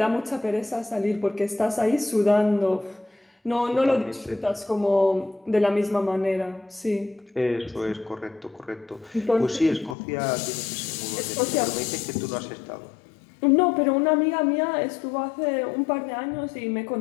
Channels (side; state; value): right; drops out; at 10.0 s